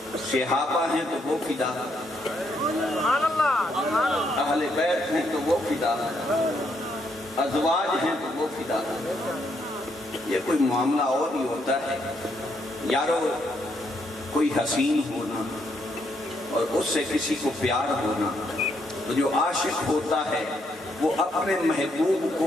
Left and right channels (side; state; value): both; normal; correlation 0.75